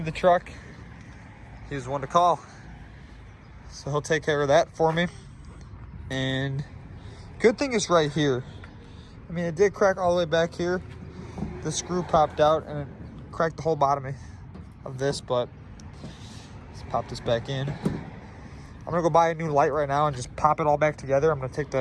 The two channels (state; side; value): identical; both; correlation 1.00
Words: the truck, he was one to call. So he'll take care of that for me. And good thing is right here. I mean, it did crack all the way back here. The screw popped out and it cracked the whole bottom of this, but let's pop this back in. I'm gonna go buy a new light right now and just pop it all back together. I'm gonna take